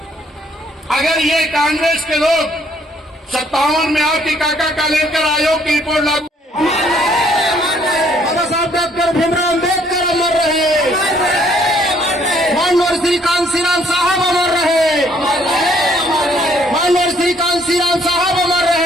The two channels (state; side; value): normal; both; correlation 0.65